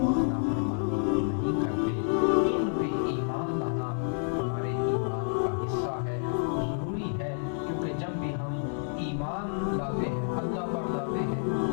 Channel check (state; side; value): silent; right; digital silence